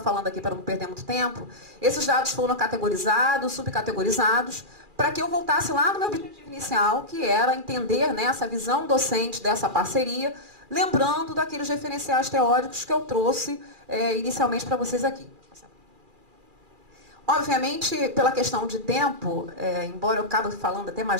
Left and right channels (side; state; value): left; late; 2.4 ms